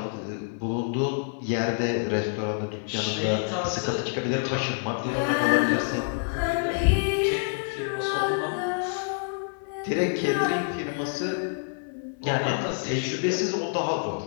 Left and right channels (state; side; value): silent; right; digital silence